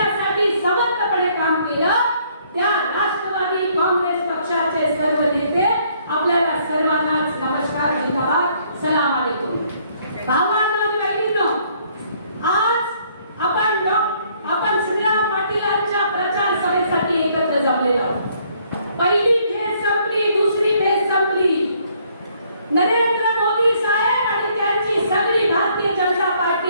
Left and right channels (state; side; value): inverted; both; correlation -0.65